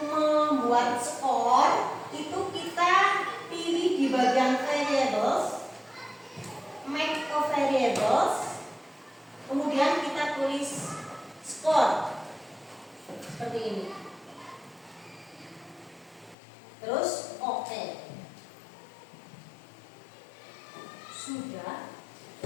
membuat skor itu kita pilih di bagian variables, make a variables, kemudian kita tulis skor seperti ini. Terus oke. Sudah.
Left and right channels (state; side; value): drops out; right; at 16.4 s